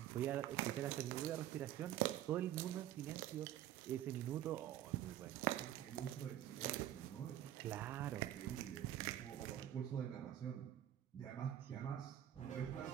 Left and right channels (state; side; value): quieter; left; 12.1 dB